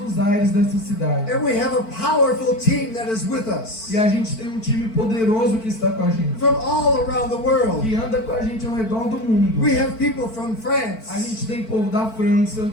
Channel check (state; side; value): late; right; 4.5 ms